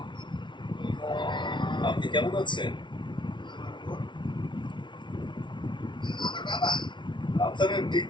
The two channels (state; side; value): late; right; 0.23 ms